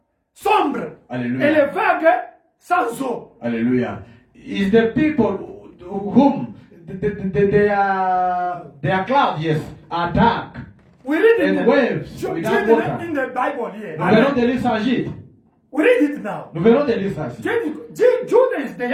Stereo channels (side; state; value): both; identical; correlation 1.00